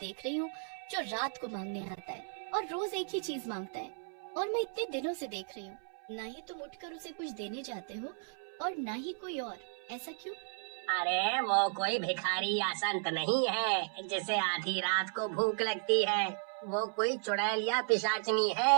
रही हूँ जो रात को मांगने आता है और रोज एक ही चीज मांगता है। और मैं इतने दिनों से देख रही हूँ, न ही तुम उठकर उसे कुछ देने जाते हो और न ही कोई और। ऐसा क्यों? अरे वो कोई भिखारी या संत नहीं है जिसे आधी रात को भूख लगती है। वो कोई चुड़ैल या पिशाचनी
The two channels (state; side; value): silent; left; 55 dB below the other